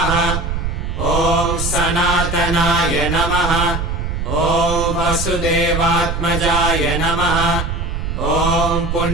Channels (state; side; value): noise; right; rumble, 3 dB below the sound